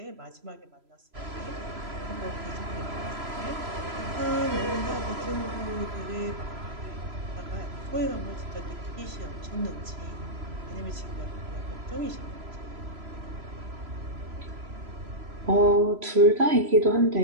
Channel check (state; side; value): late; left; 3.0 ms